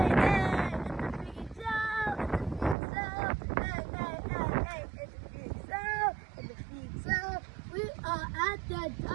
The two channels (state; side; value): drops out; left; at 2.8 s